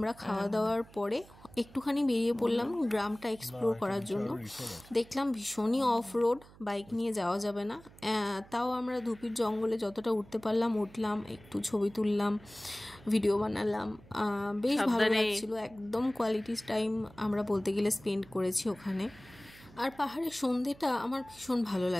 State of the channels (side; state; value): right; noise; hum, 23 dB below the sound